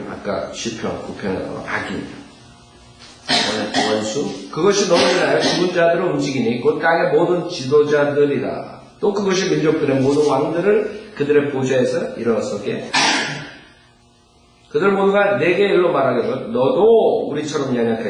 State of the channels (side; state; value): both; identical; correlation 1.00